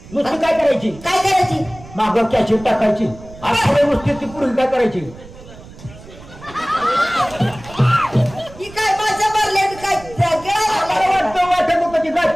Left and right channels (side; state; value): right; noise; rumble, 18 dB below the sound